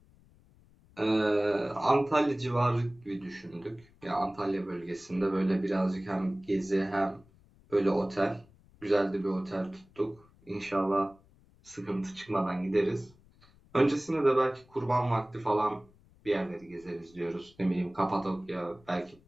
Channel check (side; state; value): left; noise; rumble, 28 dB below the sound